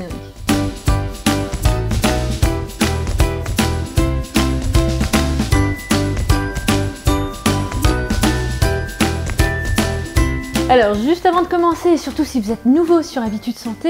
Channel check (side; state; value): both; identical; correlation 1.00